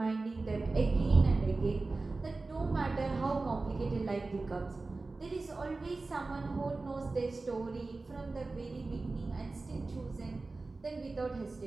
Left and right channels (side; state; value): left; quieter; 3.5 dB